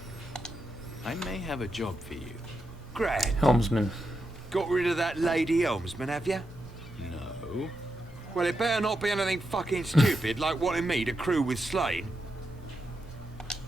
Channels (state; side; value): normal; both; correlation 0.86